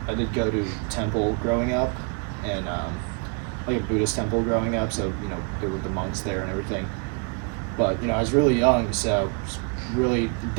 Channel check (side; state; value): left; quieter; 33.8 dB